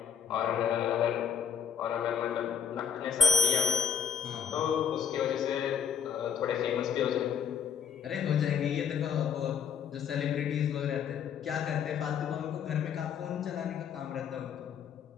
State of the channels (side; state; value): right; quieter; 7.2 dB